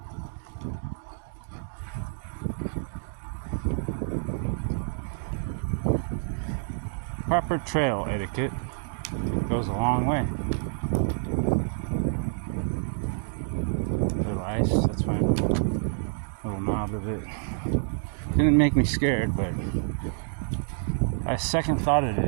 Proper trail etiquette goes a long way. Little ice, that's fine. Little knob of it. Didn't make me scared, but I second thoughted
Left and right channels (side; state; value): left; silent; digital silence